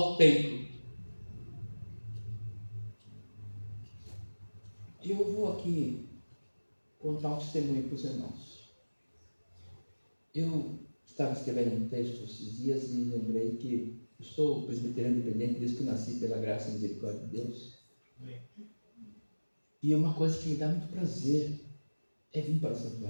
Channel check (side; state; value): both; inverted; correlation -1.00